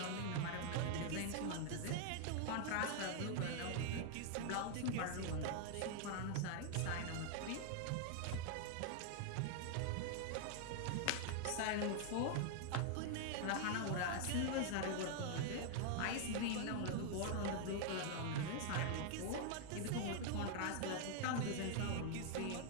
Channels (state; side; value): different; both; correlation 0.00